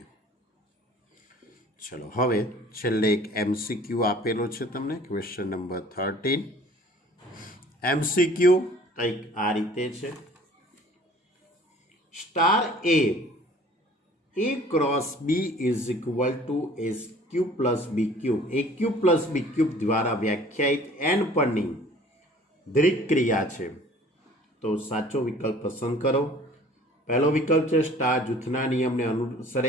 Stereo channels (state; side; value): normal; both; correlation 0.50